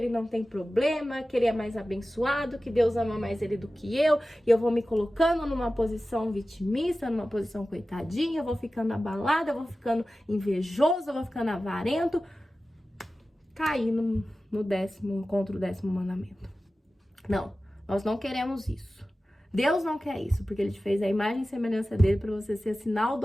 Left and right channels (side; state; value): both; normal; correlation 0.95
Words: não tem problema, que ele é mais abençoado, que Deus ama mais ele do que eu, e eu vou me colocando numa posição vitimista, numa posição coitadinha, eu vou ficando abalada, eu vou ficando invejoso, eu vou ficando avarento, cair contra o 10º mandamento. Não. Nós não queremos isso. Deus não quer isso, porque Ele te fez a imagem e semelhança dele para você ser sinal do